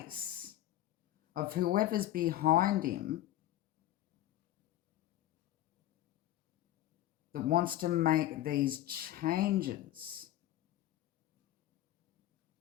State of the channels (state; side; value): quieter; right; 13.7 dB